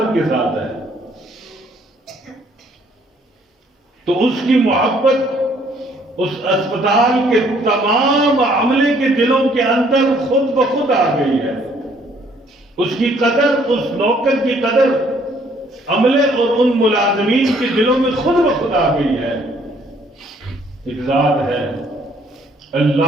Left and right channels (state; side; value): normal; both; correlation 0.63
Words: کے ساتھ ہے، تو اس کی محبت اس اسپتال کے تمام عملے کے دلوں کے اندر خود بخود آ گئی ہے، اس کی قدر، اس نوکر کی قدر عملے اور ان ملازمین کے دلوں میں خود بخود آ گئی ہے۔ ایک ذات ہے